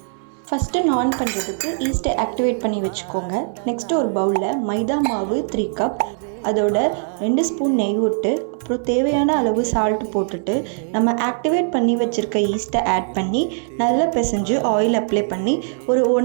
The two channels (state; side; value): silent; left; digital silence